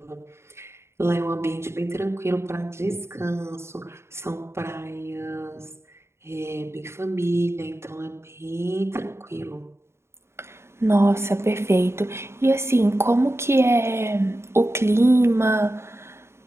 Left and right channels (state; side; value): late; left; 0.13 ms